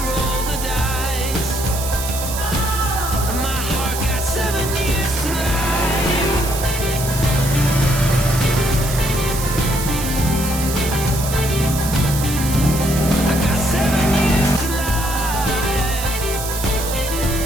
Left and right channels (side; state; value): right; noise; hiss, 7 dB below the sound